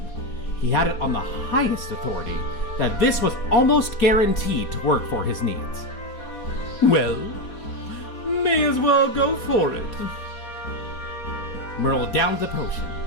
he had it on the highest authority that this was almost guaranteed to work for his needs. Well, may as well go for it. Merle downed the potion,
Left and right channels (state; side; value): late; right; 4.2 ms